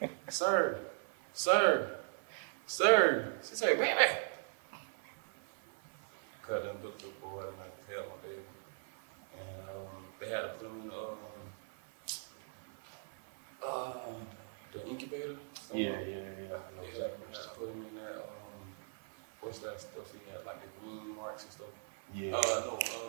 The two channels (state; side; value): silent; left; 52 dB below the other